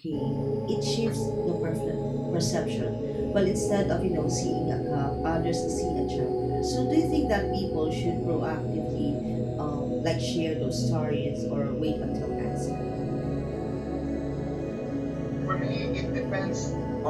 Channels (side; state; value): both; identical; correlation 1.00